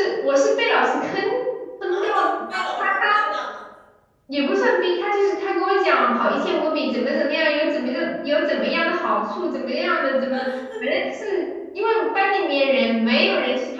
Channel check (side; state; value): both; identical; correlation 1.00